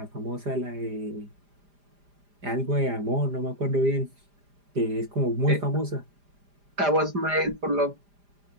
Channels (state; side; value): late; left; 5.0 ms